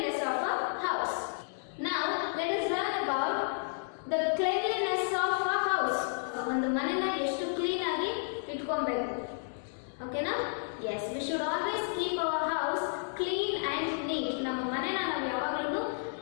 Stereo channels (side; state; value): right; silent; digital silence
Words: of a house. Now let us learn about the cleanliness of a house. ಒಂದು ಮನೆನ ಎಷ್ಟು clean ಆಗಿ ಇಟ್ಕೊಬೇಕು. ಓಕೆನಾ? Yes, we should always keep our house clean and neat. ನಮ್ಮ ಮನೆನ ನಾವು ಯಾವಾಗಲೂ